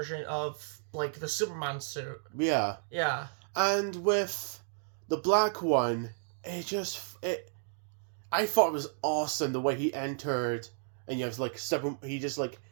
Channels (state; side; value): silent; left; digital silence